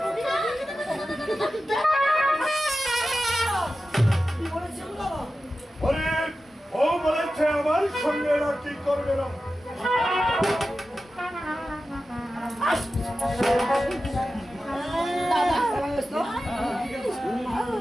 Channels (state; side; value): normal; both; correlation 0.93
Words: ও বলেছে আমার সঙ্গে এরা কি করবে না।